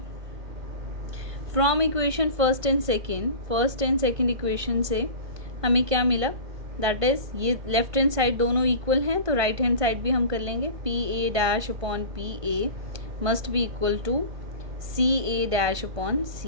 From equation first and second equation से हमें क्या मिला, दैट इज ये लेफ्ट हैंड साइड दोनों इक्वल हैं तो राइट हैंड साइड भी हम कर लेंगे। P A dash upon P A must be equal to C A dash upon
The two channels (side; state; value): left; late; 1.5 ms